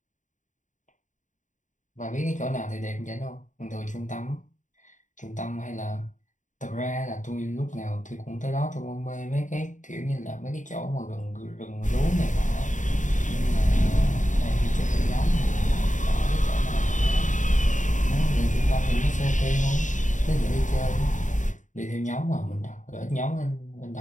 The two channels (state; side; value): late; right; 0.36 ms